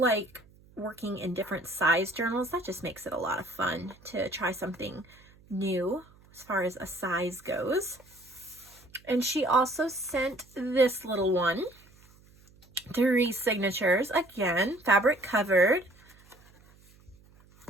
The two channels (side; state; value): right; noise; hum, 27 dB below the sound